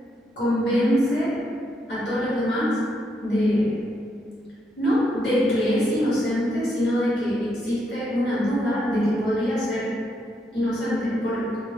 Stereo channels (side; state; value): both; normal; correlation 0.78